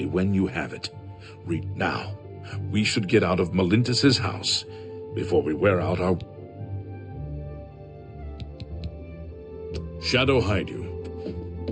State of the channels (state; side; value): identical; both; correlation 1.00